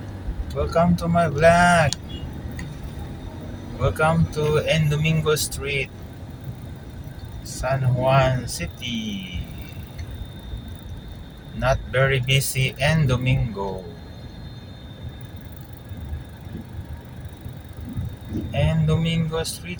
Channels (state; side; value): identical; both; correlation 1.00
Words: Welcome to my vlog. Welcome to N Domingo Street, San Juan City. Not very busy N Domingo. N Domingo